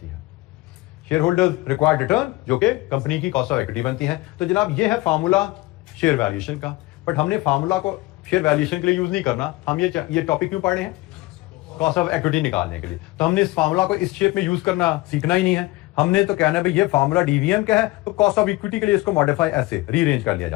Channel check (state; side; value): quieter; right; 20.0 dB